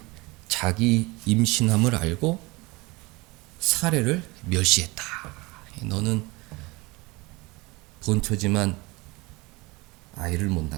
자기 임신함을 알고 사례를 멸시했다. 너는 본처지만 아이를 못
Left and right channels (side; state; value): left; quieter; 23.9 dB